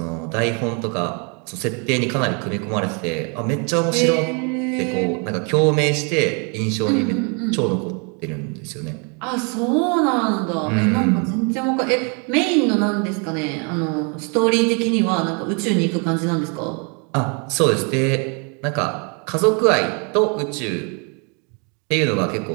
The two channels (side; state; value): left; quieter; 35.8 dB